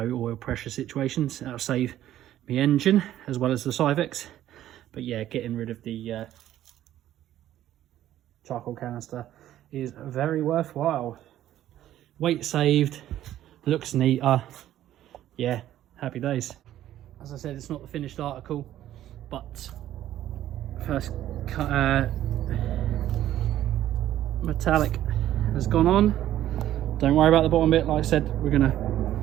oil pressure situations, that'll save my engine as well as the Cyvex. But yeah, getting rid of the charcoal canister is very worthwhile. Weight saved, looks neater. Yeah, happy days. As I said, it's not the finished article, but first metallic has gone on. Don't worry about the bottom bit. Like I said, we're gonna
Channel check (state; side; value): quieter; left; 12.6 dB